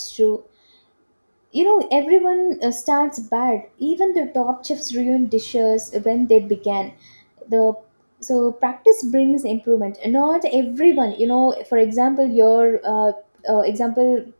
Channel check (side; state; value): both; inverted; correlation -1.00